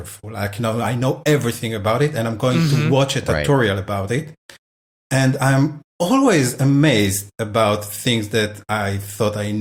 Like, you know, I know everything about it and I'm going to watch a tutorial about it. And I'm always amazed about things that I thought I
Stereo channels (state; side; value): identical; both; correlation 1.00